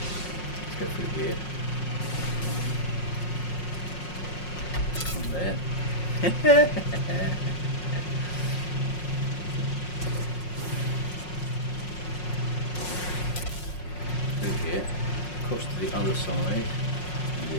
Let's go through here. From there. Through here. Across to the other side.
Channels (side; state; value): right; late; 5.5 ms